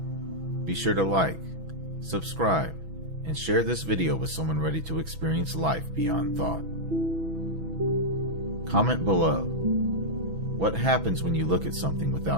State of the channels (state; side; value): late; left; 6.1 ms